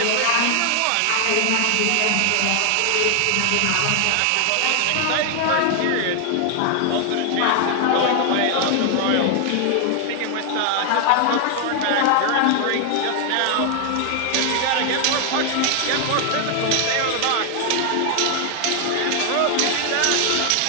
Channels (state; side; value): different; both; correlation 0.00